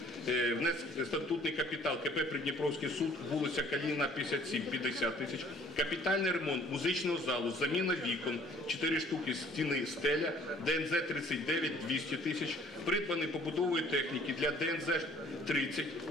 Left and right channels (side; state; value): both; normal; correlation 0.56